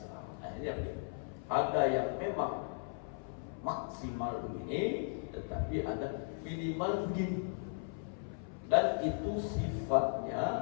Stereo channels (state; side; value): silent; right; 53 dB below the other